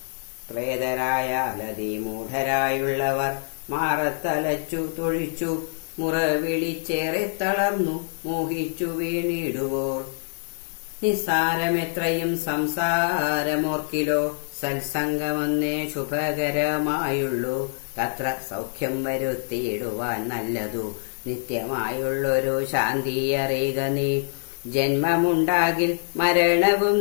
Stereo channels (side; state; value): right; silent; digital silence